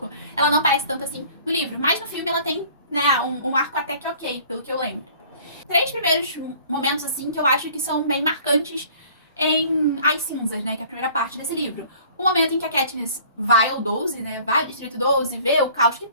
Ela não aparece tanto assim no livro. Mas no filme ela tem, né, um arco até que ok, pelo que eu lembro. 3 primeiros momentos, assim, que eu acho que são bem marcantes em As Cinzas, né, que é a primeira parte desse livro. O momento em que a Katniss vai ao 12, né, vai ao Distrito 12, vê o caos que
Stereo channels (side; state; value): both; inverted; correlation -0.51